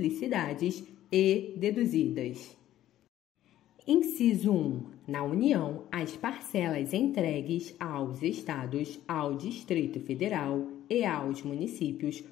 e deduzidas. Inciso 1. Na União, as parcelas entregues aos Estados, ao Distrito Federal e aos municípios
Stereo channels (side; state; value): right; quieter; 13.0 dB